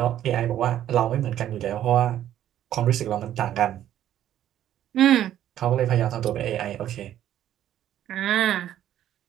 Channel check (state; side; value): quieter; left; 11.7 dB